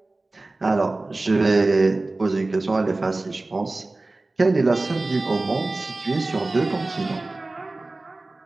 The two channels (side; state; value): left; quieter; 3.1 dB